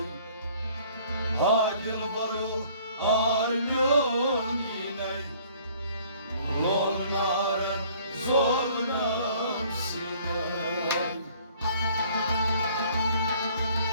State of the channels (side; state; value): both; inverted; correlation -0.56